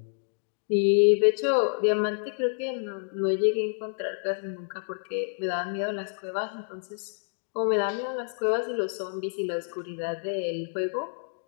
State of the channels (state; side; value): silent; right; digital silence